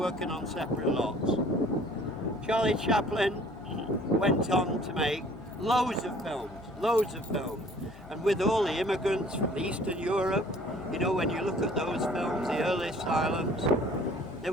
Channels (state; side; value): noise; left; hum, 19 dB below the sound